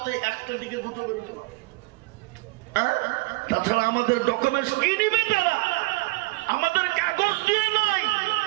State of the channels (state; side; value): quieter; left; 23.8 dB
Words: 1টা দিকে 2টো বেরোতে পারে। তাছাড়া আমাদের ডকুমেন্টস কি নিবে তারা? আমাদের কাগজ দিয়ে নয়,